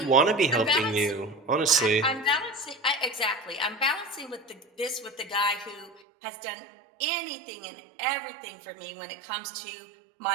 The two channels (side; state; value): left; drops out; at 6.0 s